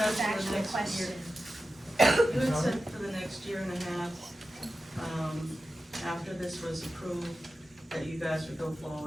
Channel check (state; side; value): normal; both; correlation 0.93